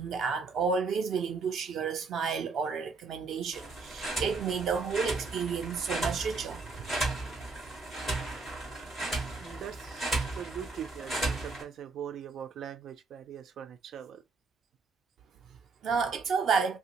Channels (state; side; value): quieter; left; 4.4 dB